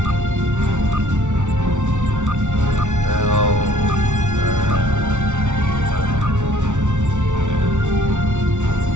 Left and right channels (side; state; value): left; late; 0.85 ms